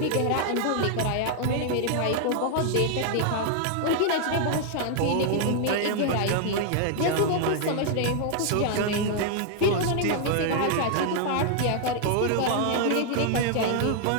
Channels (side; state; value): both; different; correlation 0.00